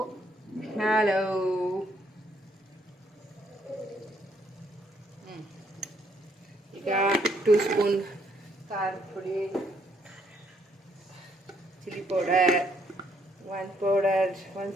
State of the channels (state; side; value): normal; both; correlation 0.70